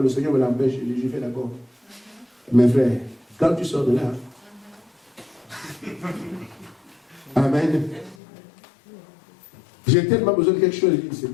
le Seigneur me l'empêche. Je fais d'accord. Mes frères, quand tu sors de là, amen. J'ai tellement besoin de quelque chose. Je dis,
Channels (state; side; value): drops out; right; at 8.2 s